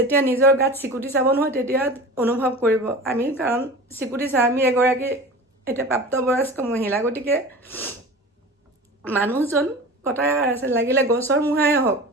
নিজৰ গাত চিকুটি চাব নহয় তেতিয়া অনুভৱ কৰিব আমি কাৰণ চিকুটি চা আমি এগৰাকী এটা প্ৰাপ্তবয়স্ক মহিলা গতিকে মানুহজন কথা আছে লাগিলে গছৰ মুহাই হওক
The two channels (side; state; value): both; normal; correlation 0.35